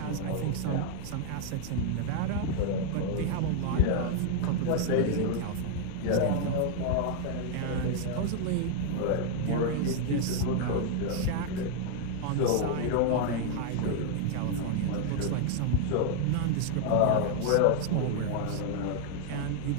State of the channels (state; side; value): different; both; correlation 0.00